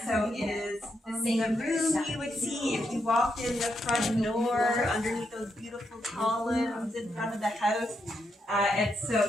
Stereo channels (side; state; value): both; normal; correlation 0.81